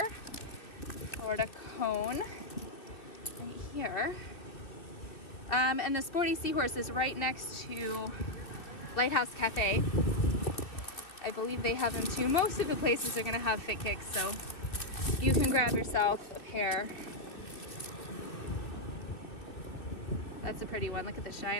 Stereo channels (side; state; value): right; late; 2.6 ms